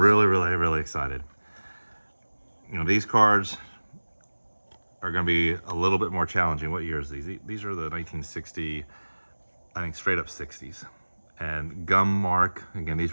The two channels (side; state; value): both; inverted; correlation -1.00